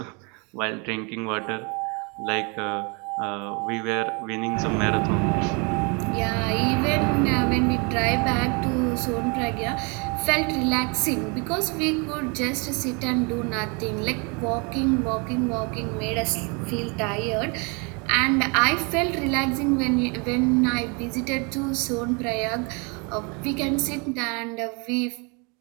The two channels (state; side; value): quieter; left; 32.0 dB